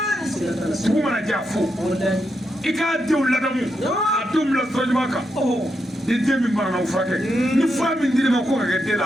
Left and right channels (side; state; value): both; normal; correlation 0.83